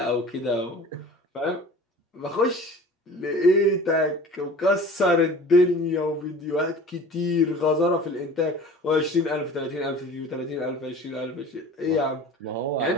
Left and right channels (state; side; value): normal; both; correlation 0.42